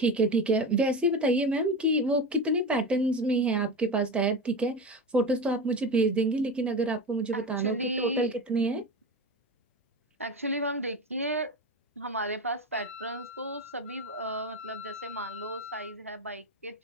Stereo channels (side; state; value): both; normal; correlation 0.24